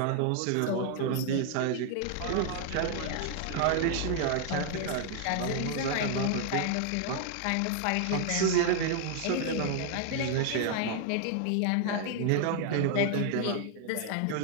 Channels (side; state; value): both; different; correlation 0.00